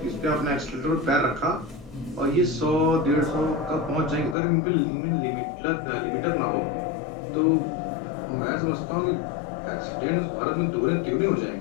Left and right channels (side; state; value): right; drops out; at 4.4 s